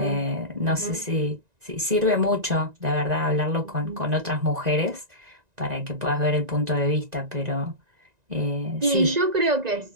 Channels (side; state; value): left; late; 1.9 ms